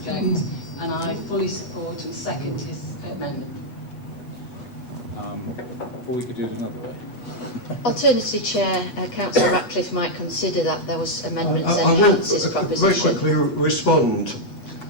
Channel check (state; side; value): late; right; 8.2 ms